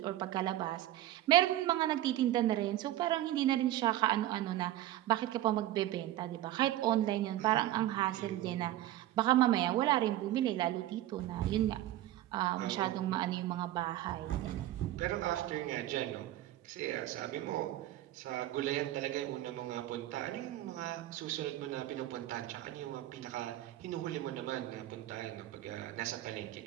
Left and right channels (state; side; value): quieter; left; 14.1 dB